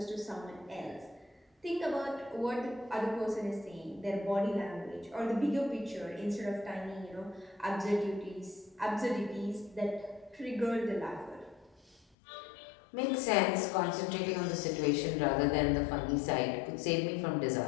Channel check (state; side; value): drops out; right; at 12.1 s